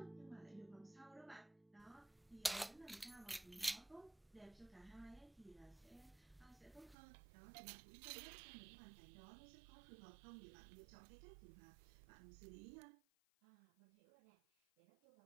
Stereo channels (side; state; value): left; drops out; at 7.0 s